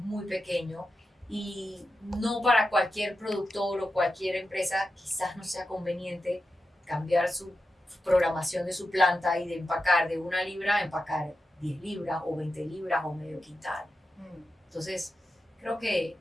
muy pequeño, y no para cualquier productor o cualquier empresa quizás no sea conveniente cambiar su programación de su planta y de empacar de 1 libra a empacar 10 libras o 20 libras o medio quintal. Entonces, creo que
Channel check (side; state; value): both; normal; correlation 0.90